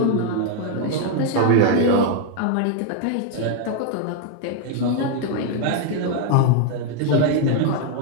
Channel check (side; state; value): both; different; correlation 0.01